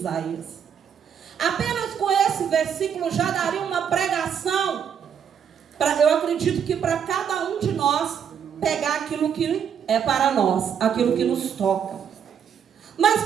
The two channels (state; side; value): quieter; left; 8.0 dB